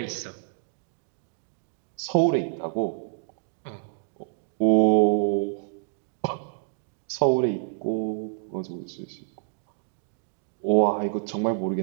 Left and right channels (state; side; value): silent; left; digital silence